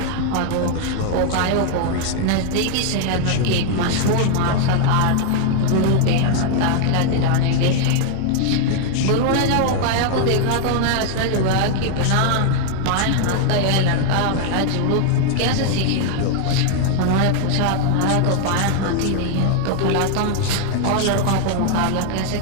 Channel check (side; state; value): both; different; correlation 0.00